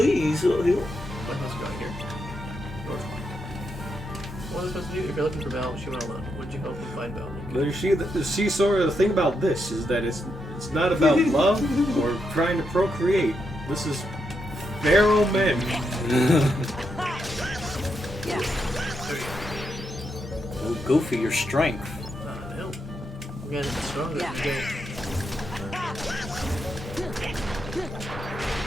What am I supposed to go here? North. What am I supposed to do? If you're looking for Belle, she went alone. Would you help me find Belle? See, Sora, the thing about this is that it's not about love or trying to procreate. This is feral men. Oh, Goofy, your strength. No. We're getting stronger.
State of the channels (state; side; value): normal; both; correlation 0.82